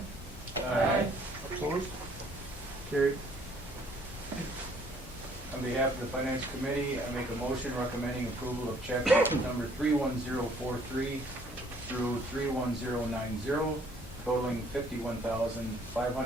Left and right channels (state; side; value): normal; both; correlation 0.61